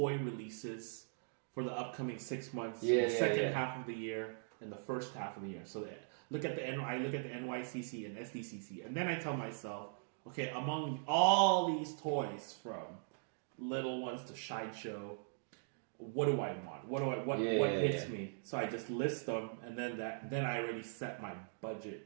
releases for the upcoming 6 months, the second half of the year and the first half of the year. So I look at the NYCC and SDCC, and then I tell myself, okay, among all these toys from little ones to sideshow, what do I want? What hits me? So I just list them, and then I already set my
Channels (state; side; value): silent; left; digital silence